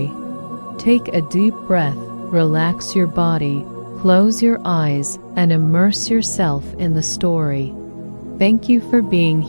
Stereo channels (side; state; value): both; inverted; correlation -1.00